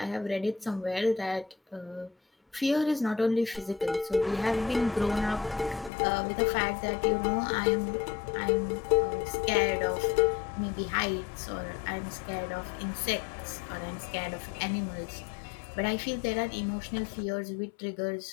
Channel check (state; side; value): drops out; right; at 5.9 s